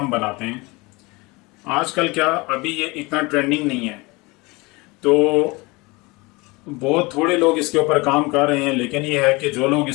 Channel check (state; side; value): quieter; right; 24.7 dB